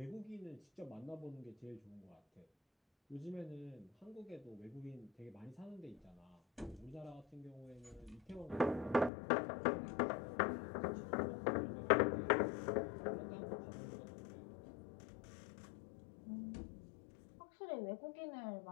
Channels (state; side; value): drops out; right; at 9.1 s